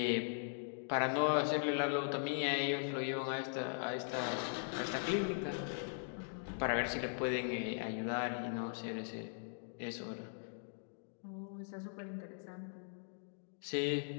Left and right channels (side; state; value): right; silent; digital silence